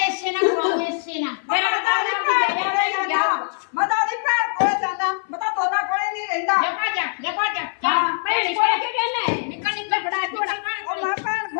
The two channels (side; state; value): right; silent; 59 dB below the other